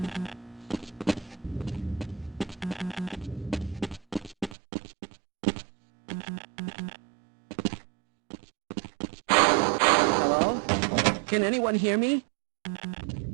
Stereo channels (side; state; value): left; drops out; at 4.5 s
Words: Hello? Can anyone hear me?